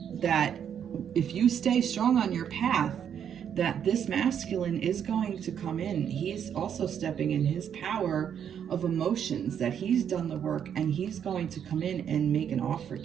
that if you stay strong on your path, that this masculine is going to come in. He's also stepping in his power of emotions, that he's done the work and he's going to come in and make an offer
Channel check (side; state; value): left; quieter; 8.6 dB